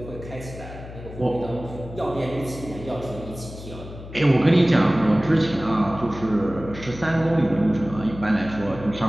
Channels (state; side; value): noise; left; hum, 13 dB below the sound